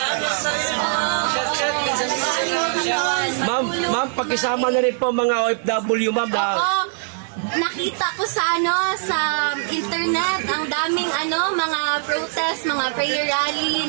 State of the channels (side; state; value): left; silent; 64 dB below the other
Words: Ma'am, pakisama na rin po mga OFW, ma'am. Oo. Nakita ko sa internet ang daming mga protest, mga prayer rally